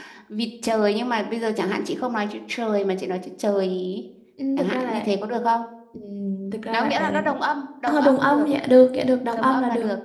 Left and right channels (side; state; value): both; identical; correlation 1.00